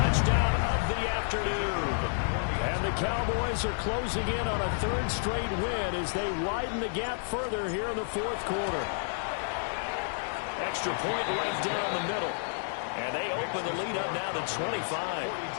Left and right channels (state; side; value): silent; right; digital silence